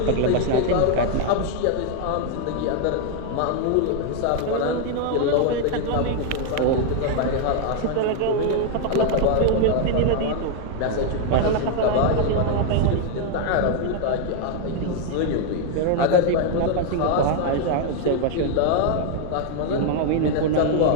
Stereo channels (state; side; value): different; both; correlation 0.00